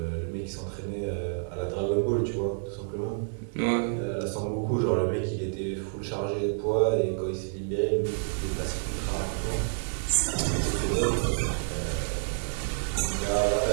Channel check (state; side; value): silent; left; digital silence